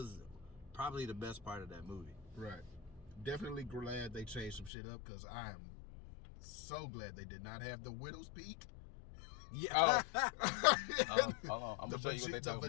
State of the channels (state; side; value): drops out; right; at 4.7 s